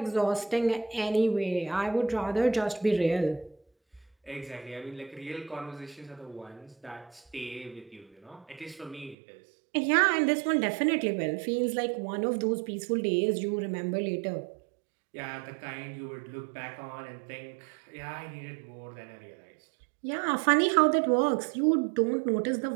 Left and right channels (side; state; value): left; drops out; at 9.2 s